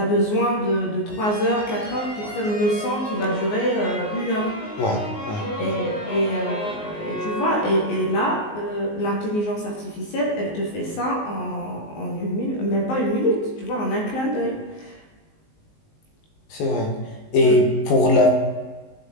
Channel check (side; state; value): right; late; 19 ms